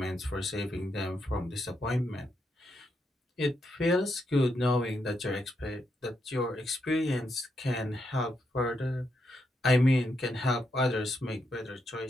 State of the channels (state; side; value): normal; both; correlation 0.81